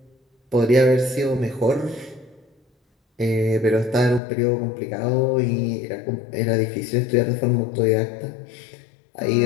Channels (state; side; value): drops out; right; at 4.2 s